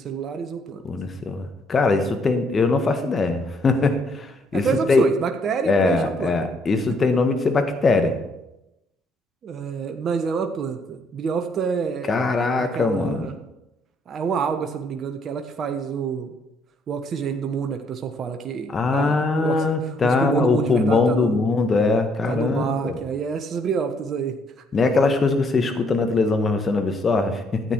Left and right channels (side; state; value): both; normal; correlation 0.69